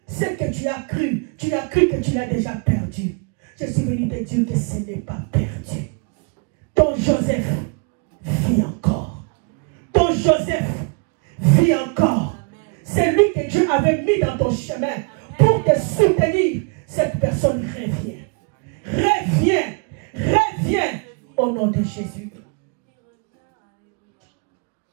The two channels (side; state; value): left; quieter; 34.4 dB